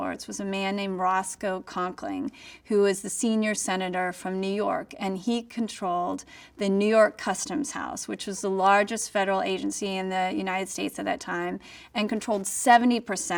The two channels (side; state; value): both; identical; correlation 1.00